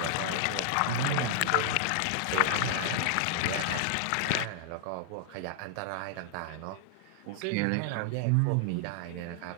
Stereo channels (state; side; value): different; both; correlation 0.00